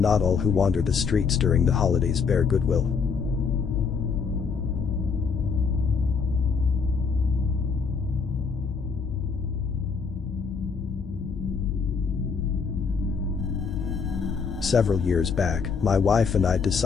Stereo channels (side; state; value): right; quieter; 5.6 dB